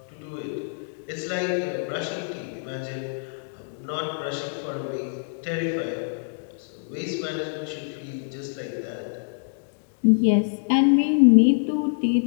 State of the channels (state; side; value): silent; right; digital silence